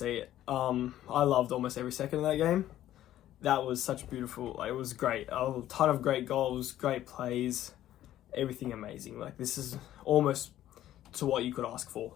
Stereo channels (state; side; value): quieter; right; 12.9 dB